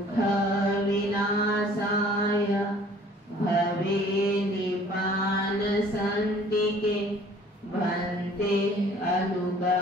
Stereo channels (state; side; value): normal; both; correlation 0.53